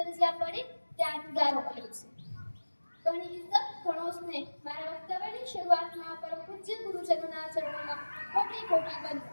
જ્યાં પડી ત્યાં જુદારો અલગ છે. ઘણી ઇજ્જત, ઘણો સ્નેહ. મારા વક્તવ્યની શરૂઆતમાં પરમ પૂજ્ય ગુરુજનોના ચરણોમાં કોટી કોટી વંદન.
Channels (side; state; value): both; inverted; correlation -1.00